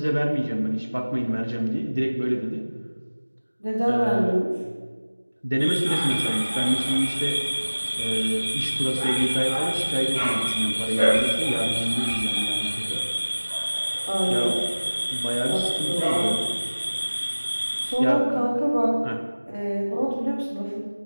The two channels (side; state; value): both; inverted; correlation -1.00